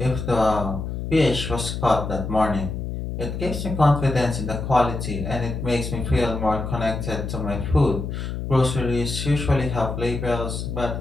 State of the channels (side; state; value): left; noise; hum, 5 dB below the sound